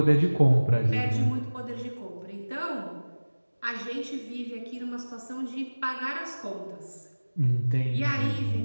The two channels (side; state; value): both; inverted; correlation -1.00